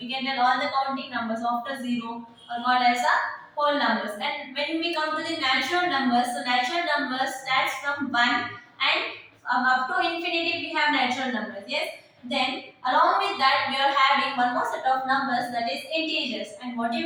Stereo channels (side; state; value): both; identical; correlation 1.00